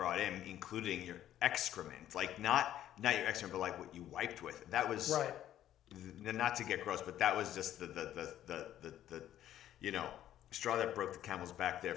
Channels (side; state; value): right; quieter; 11.9 dB